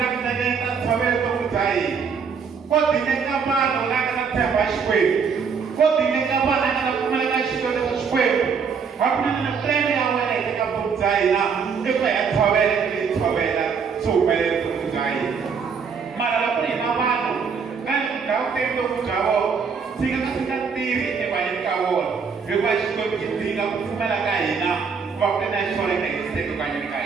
nekana tawelo mtomzai kodi nekabano nakana temba shikwebu kodi nekabano nakana kumeleka shikwebu hakuna na plende ya wena itaenda mtomzai na iko ya tawelo kili tawela sumele mtomzai mara la plende mabano kani kautendo mtawo sika tiri ebayekawo yuko shikwebu kitinga kufumela kaina wakati na shole na kiseko kanyika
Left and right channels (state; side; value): quieter; left; 6.0 dB